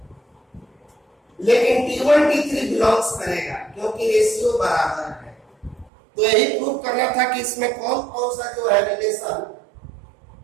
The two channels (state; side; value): drops out; left; at 5.9 s